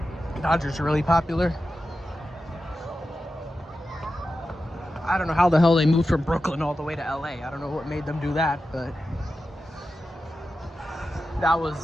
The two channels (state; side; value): normal; both; correlation 0.92